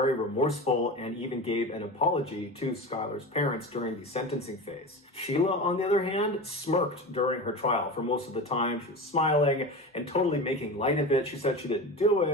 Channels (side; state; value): both; normal; correlation 0.28